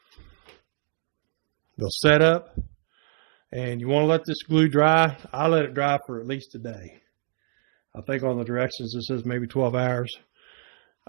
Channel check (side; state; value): left; silent; digital silence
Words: they'll set up, and you want to let this glue dry. I let it dry for at least a day. I think on the directions it says maybe 12 hours.